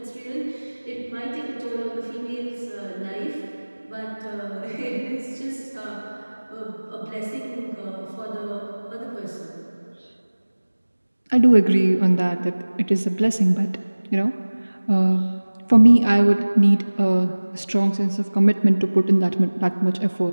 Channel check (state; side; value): inverted; both; correlation -1.00